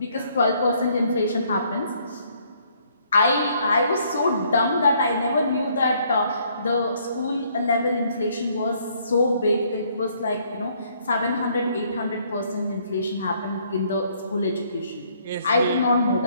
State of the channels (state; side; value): inverted; both; correlation -0.66